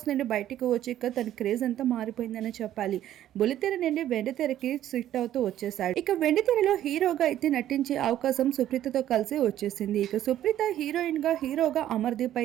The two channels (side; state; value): left; quieter; 12.2 dB